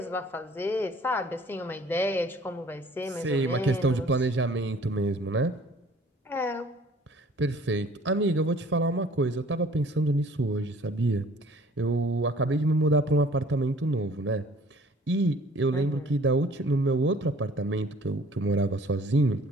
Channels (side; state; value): both; normal; correlation 0.53